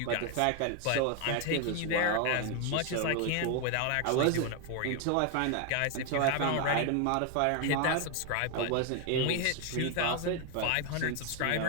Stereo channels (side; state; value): both; different; correlation 0.01